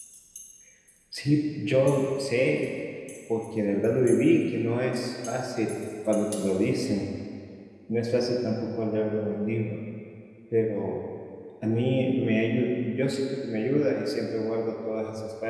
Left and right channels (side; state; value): both; identical; correlation 1.00